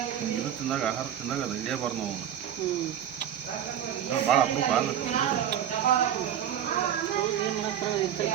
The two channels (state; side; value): quieter; left; 10.0 dB